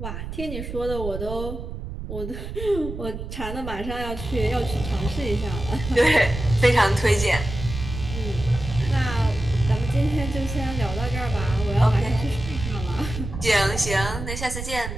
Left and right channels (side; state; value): right; noise; rumble, 7 dB below the sound